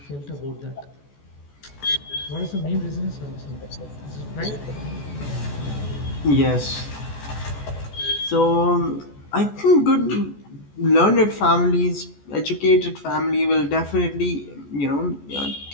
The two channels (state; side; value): late; right; 14 ms